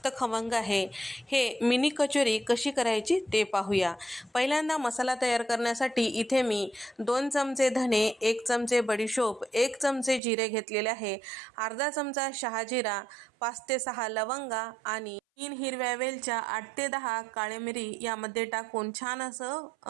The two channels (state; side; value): drops out; left; at 10.2 s